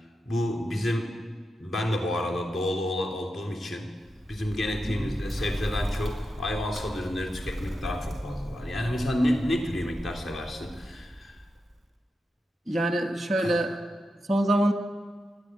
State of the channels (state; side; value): normal; both; correlation 0.88